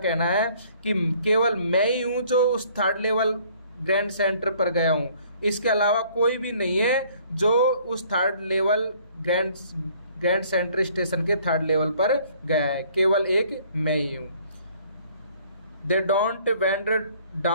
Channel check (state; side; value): inverted; both; correlation -0.58